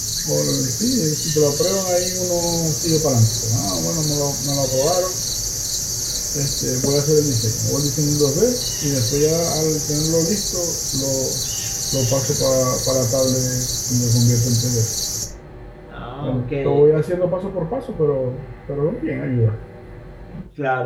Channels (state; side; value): identical; both; correlation 1.00